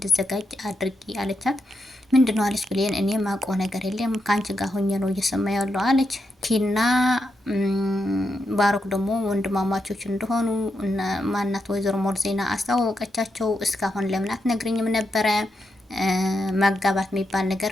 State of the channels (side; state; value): both; normal; correlation 0.84